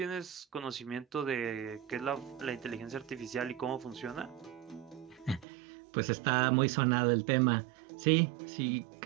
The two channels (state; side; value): drops out; left; at 5.5 s